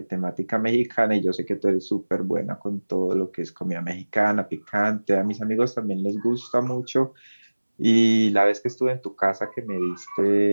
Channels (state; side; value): inverted; both; correlation -1.00